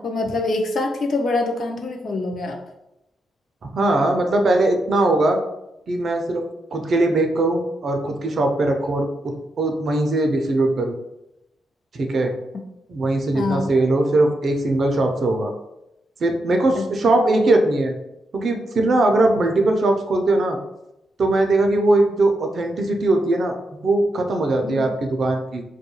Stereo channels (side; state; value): both; normal; correlation 0.83